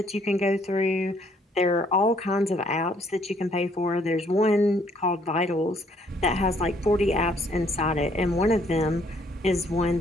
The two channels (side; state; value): both; normal; correlation 0.65